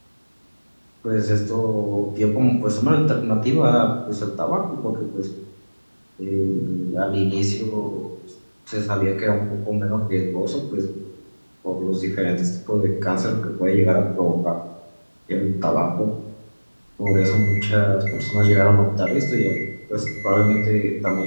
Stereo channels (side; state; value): both; inverted; correlation -1.00